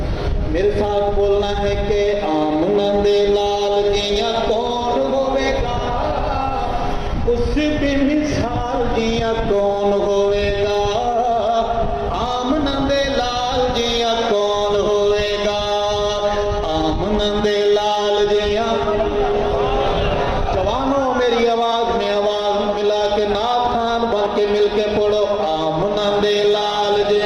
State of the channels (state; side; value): identical; both; correlation 1.00